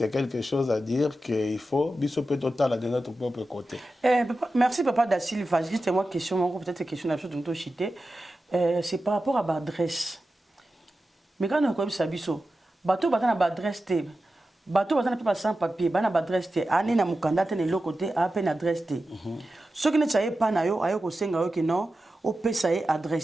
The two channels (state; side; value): normal; both; correlation 0.92